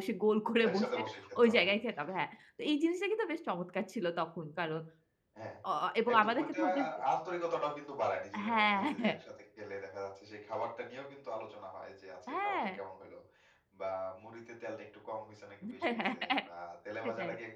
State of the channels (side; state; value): both; identical; correlation 1.00